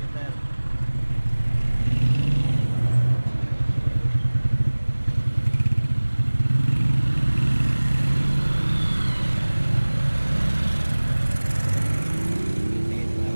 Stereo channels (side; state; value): both; inverted; correlation -1.00